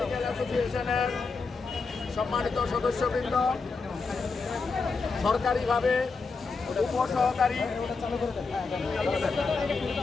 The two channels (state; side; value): quieter; right; 4.4 dB